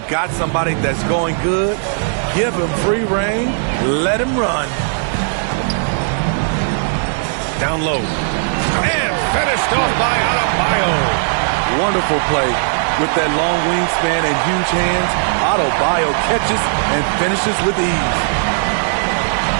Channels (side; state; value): left; silent; 61 dB below the other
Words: got somebody that's going good, give him free reign. Let him run. Down low. And finished off by Adebayo. Wonderful play. With that long wingspan and huge hands, Adebayo catches and finishes with ease.